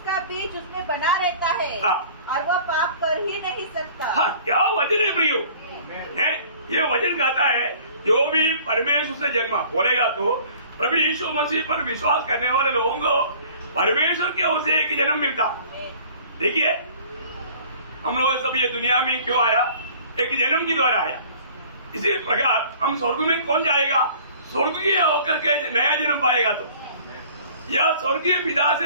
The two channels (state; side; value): inverted; both; correlation -0.50